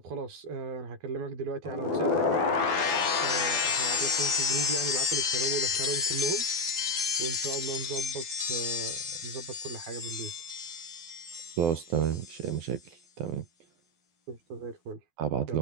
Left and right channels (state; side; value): late; left; 12 ms